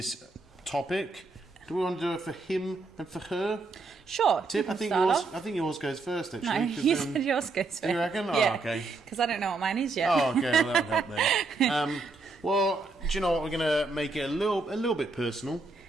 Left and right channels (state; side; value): quieter; left; 3.6 dB